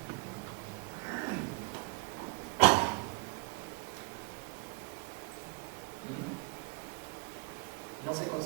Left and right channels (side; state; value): left; quieter; 30.7 dB